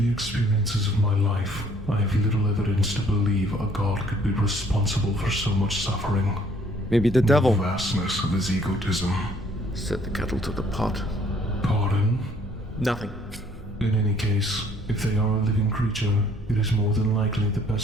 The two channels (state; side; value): normal; both; correlation 0.61